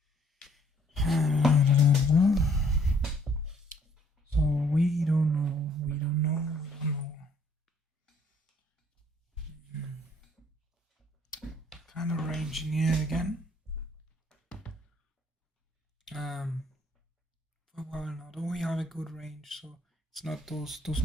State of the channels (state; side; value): normal; both; correlation 0.62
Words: So we don't know. Kind of ranging here again. Well, now don't we have a good range? So it's not those